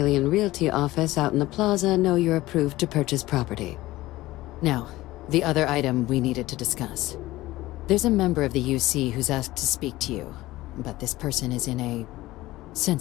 Realty office out in the plaza know you're approved to purchase property. Now, the other item we needed to discuss. There's a member of the UC who's asked to speak to you, but this person is in a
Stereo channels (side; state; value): right; quieter; 17.6 dB